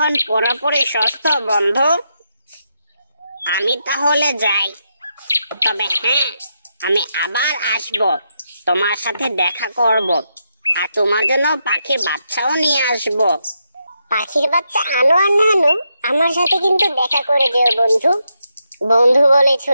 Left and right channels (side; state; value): both; inverted; correlation -0.83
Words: পুরোপুরি সুস্থ বন্ধু। আমি তাহলে যাই। তবে হ্যাঁ, আমি আবার আসব, তোমার সাথে দেখা করব, আর তোমার জন্য পাখির বাচ্চাও নিয়ে আসব। পাখির বাচ্চা আনো আর না আনো, আমার সাথে কিন্তু দেখা করে যেও বন্ধু। বন্ধু বলেছো